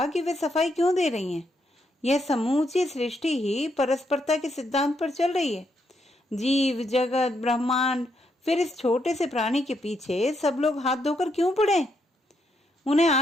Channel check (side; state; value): both; normal; correlation 0.77